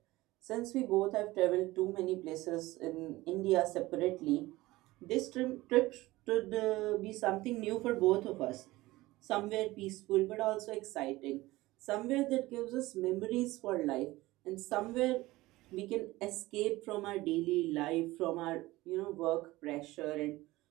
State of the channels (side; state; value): left; quieter; 18.9 dB